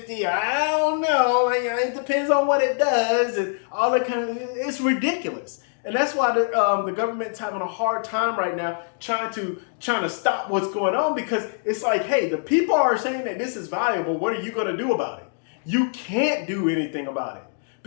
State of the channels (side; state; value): right; silent; digital silence